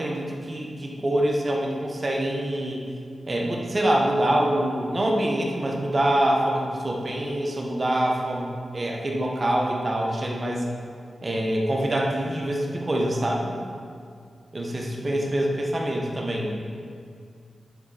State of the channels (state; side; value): normal; both; correlation 0.94